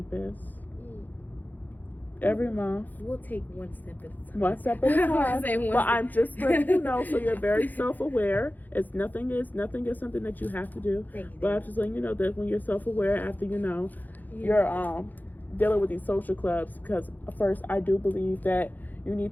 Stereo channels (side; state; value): right; late; 0.084 ms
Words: every month. We'll take one step at a time. One step at a time. But I'm just letting you know, so you're very self-aware. It's nothing is something that you have to do. Thank you. But I'm just letting you know that when you're self-aware, after you're dealing with these social clubs, because first I do believe that you